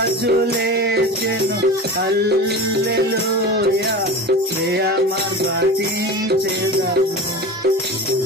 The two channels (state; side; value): normal; both; correlation 0.30